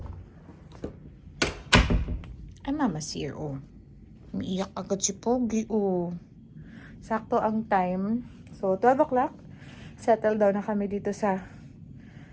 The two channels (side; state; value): both; identical; correlation 1.00